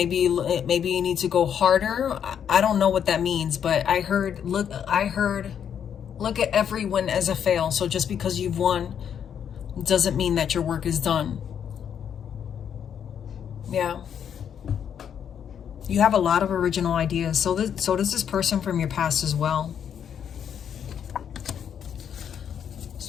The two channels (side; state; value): right; quieter; 8.4 dB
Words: you need to go harder. I don't know what that means, but I heard look at every win as a fail. So just because you've won doesn't mean that your work is done. Yeah. You have a lot of original ideas. So does this person from your past as well.